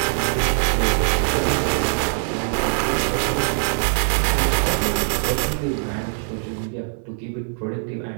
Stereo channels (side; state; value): left; silent; digital silence